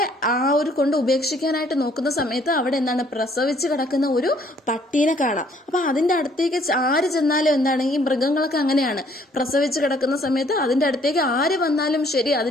ആ ഒരു കൊണ്ട് ഉപേക്ഷിക്കാനായിട്ട് നോക്കുന്ന സമയത്ത് അവിടെ എന്താണ്, പ്രസവിച്ച് കിടക്കുന്ന ഒരു പട്ടീനെ കാണാം. അപ്പൊ അതിന്റെ അടുത്തേക്ക് ആര് ചെന്നാലും എന്താണ്, ഈ മൃഗങ്ങളൊക്കെ അങ്ങനെയാണ്, പ്രസവിച്ച് കിടക്കുന്ന സമയത്ത് അതിന്റെ അടുത്തേക്ക് ആര് വന്നാലും ശരി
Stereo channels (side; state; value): both; normal; correlation 0.62